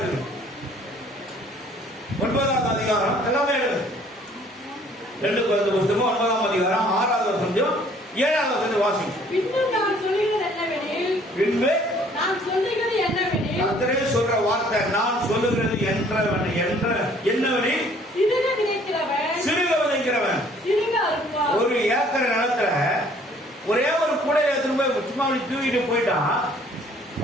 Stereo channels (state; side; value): normal; both; correlation 0.58